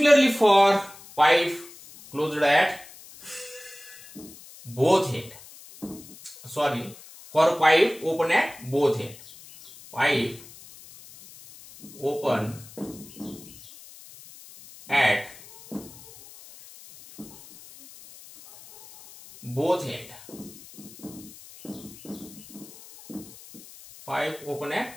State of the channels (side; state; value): left; noise; hiss, 19 dB below the sound